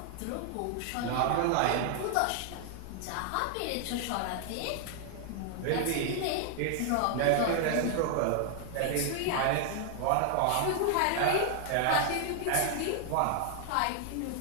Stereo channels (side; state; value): both; different; correlation 0.00